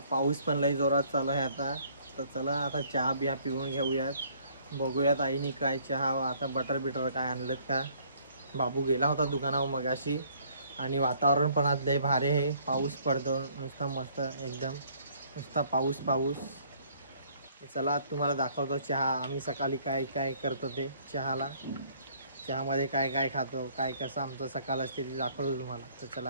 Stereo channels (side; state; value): both; inverted; correlation -0.61